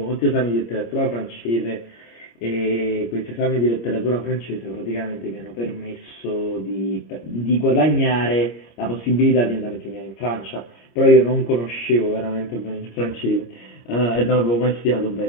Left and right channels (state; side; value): late; right; 26 ms